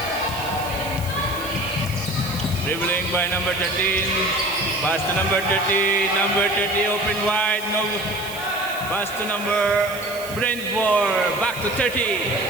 Dribbling by number 13, pass to number 30, open wide, no, pass to number Brentford, back to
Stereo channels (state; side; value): noise; right; hiss, 14 dB below the sound